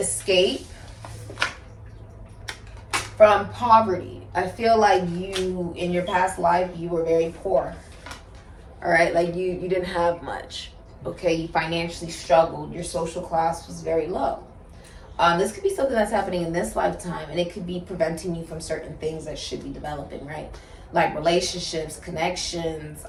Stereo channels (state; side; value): identical; both; correlation 1.00